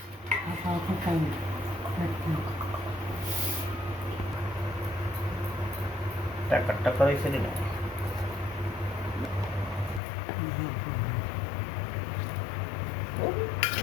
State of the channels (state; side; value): drops out; right; at 10.0 s